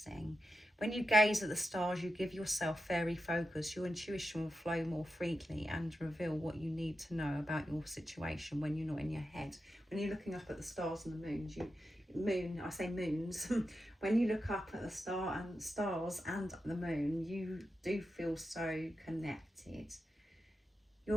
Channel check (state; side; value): normal; both; correlation 0.89